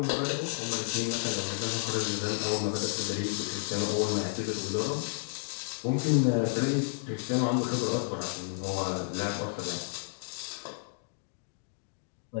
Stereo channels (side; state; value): right; silent; digital silence